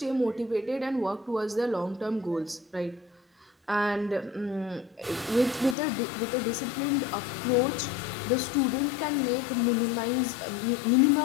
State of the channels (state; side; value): drops out; right; at 5.8 s